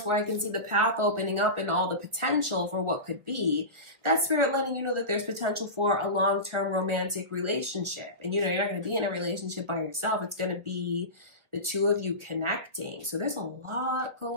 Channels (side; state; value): left; late; 1.4 ms